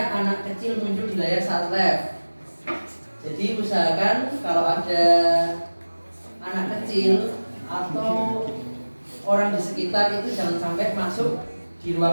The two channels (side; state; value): both; inverted; correlation -1.00